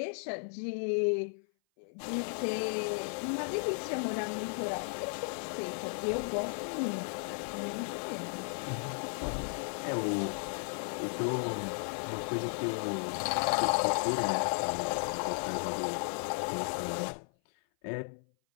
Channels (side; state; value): right; silent; 55 dB below the other